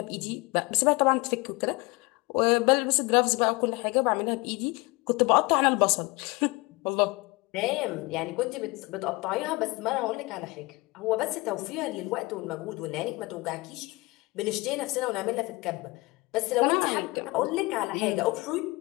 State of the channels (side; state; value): right; quieter; 24.1 dB